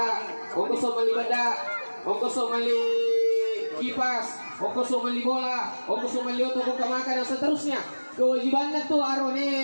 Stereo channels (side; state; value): both; inverted; correlation -1.00